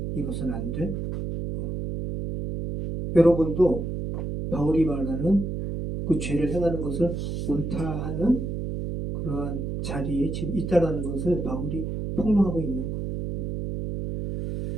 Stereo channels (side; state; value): right; noise; hum, 4 dB below the sound